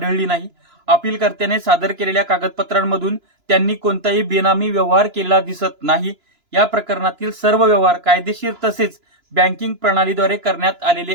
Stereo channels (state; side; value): late; left; 2.9 ms